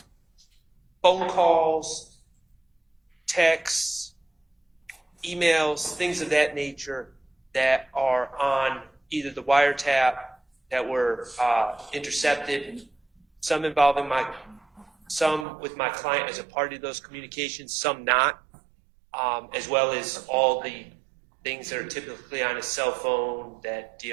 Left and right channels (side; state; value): left; drops out; at 15.5 s